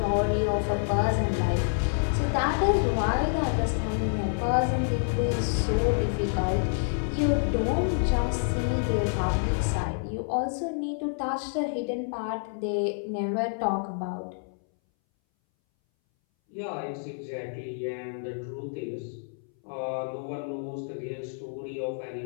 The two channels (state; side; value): silent; right; 59 dB below the other